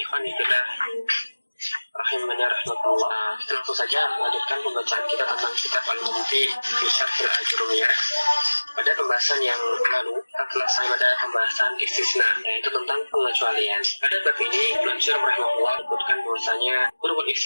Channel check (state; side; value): inverted; both; correlation -1.00